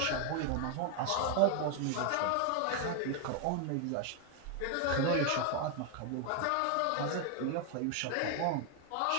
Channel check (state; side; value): different; both; correlation 0.01